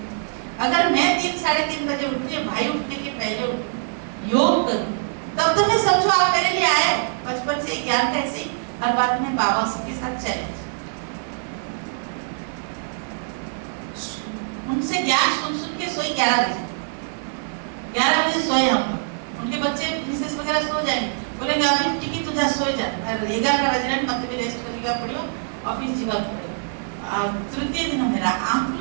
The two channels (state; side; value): silent; left; digital silence